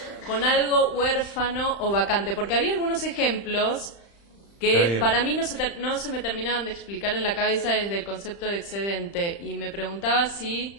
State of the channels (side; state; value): right; late; 35 ms